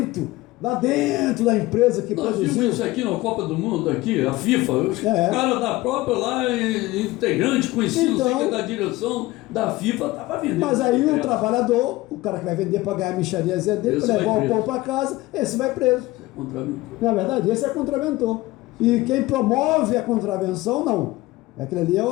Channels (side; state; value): right; quieter; 19.1 dB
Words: da empresa que Nós produziu. vimos isso aqui na Copa do Mundo, aqui, a FIFA, os caras da própria lá, integrante, conhecido, Então, sei que é da direção da FIFA, estava vendendo. Mas aí o trabalhador, o cara que vai vender para ganhar a mixariazinha dele, Esse para vai levar o preso. pão para casa, esse vai preso. Contraventor. Na verdade, esse é contraventor. E quem promove a contravenção, não. Aquele ali é